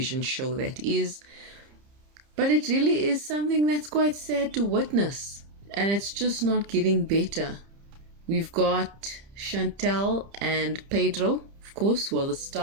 show that is, but it really is something that's quite sad to witness. And it's just not getting better. We've got Chantel and Pedro, of course, who are the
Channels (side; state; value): left; late; 30 ms